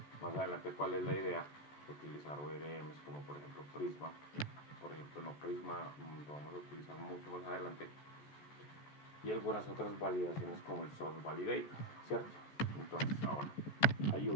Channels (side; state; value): right; late; 14 ms